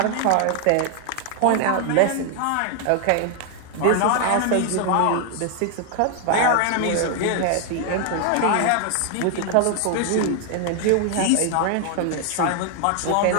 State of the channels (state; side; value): different; both; correlation 0.00